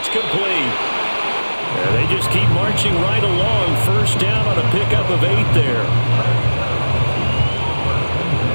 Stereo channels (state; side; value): inverted; both; correlation -1.00